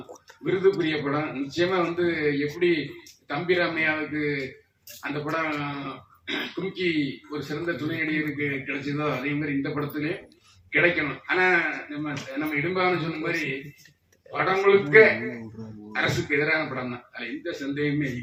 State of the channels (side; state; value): both; identical; correlation 1.00